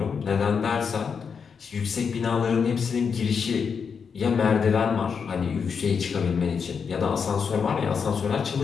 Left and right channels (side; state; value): right; quieter; 6.2 dB